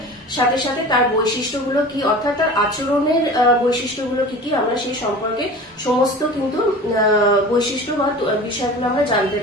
সাথে সাথে তার বৈশিষ্ট্যগুলো কি, অর্থাৎ তার আচরণের বৈশিষ্ট্যগুলো কি কি, আমরা সেই সম্পর্কে সমস্ত কিন্তু বৈশিষ্ট্য বা বিষয়গুলো আমরা জানতে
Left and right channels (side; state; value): both; normal; correlation 0.37